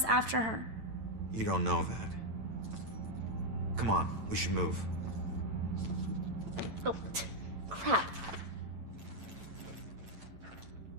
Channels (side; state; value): left; late; 9.0 ms